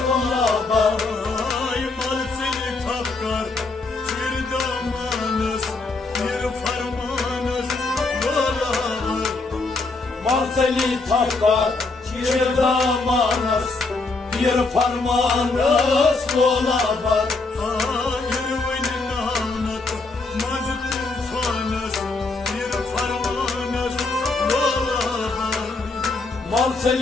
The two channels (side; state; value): right; quieter; 3.6 dB